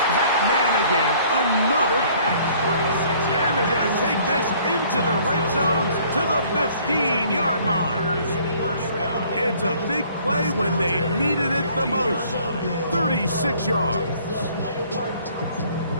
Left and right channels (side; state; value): both; inverted; correlation -0.57